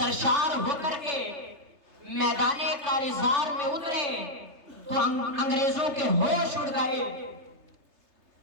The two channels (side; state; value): left; late; 3.3 ms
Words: ہو کر کے میدان کارزار میں اترے تو انگریزوں کے ہوش اڑ گئے،